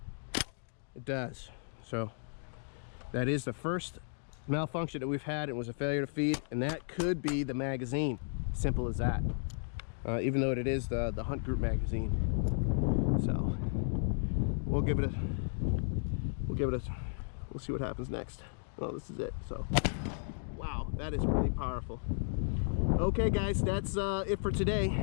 It does. So that is the first malfunction that we've had. It was a failure to feed, and that could be the magazine. Simple as that. Even though it is the Hunt Group magazine. So we'll see what happens next. Well, this is it. So wow, that is really powerful. Okay guys, that's it for today.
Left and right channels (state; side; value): silent; right; digital silence